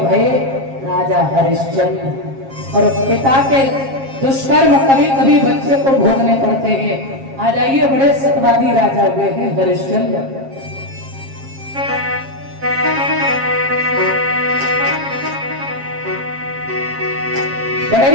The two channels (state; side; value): late; left; 7.4 ms